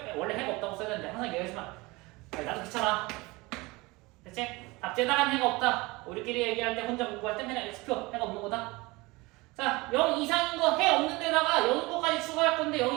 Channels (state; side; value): quieter; left; 23.2 dB